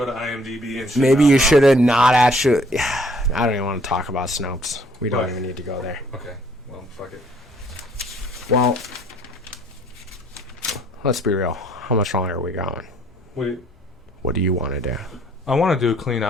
to IMDb and shit. Maybe you should have not actually. I don't even want to talk about Snopes. We don't even need to go there. Okay. Well, fuck it. Well, let's be real. How much longer are we going? Wait. What do you want to do? I want to do a clean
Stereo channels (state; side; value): normal; both; correlation 0.62